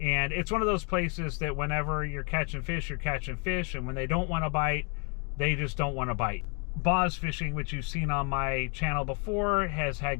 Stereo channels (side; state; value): right; quieter; 35.9 dB